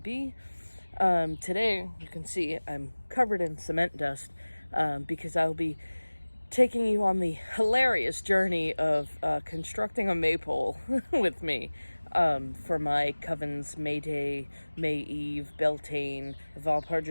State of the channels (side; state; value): both; inverted; correlation -1.00